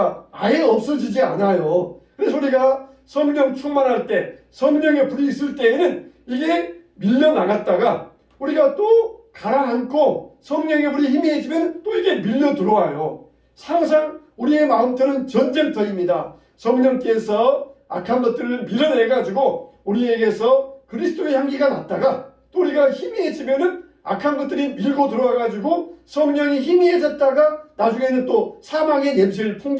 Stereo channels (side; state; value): both; identical; correlation 1.00